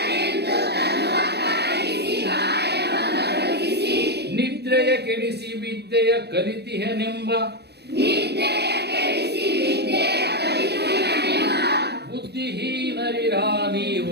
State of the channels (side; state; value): left; late; 0.48 ms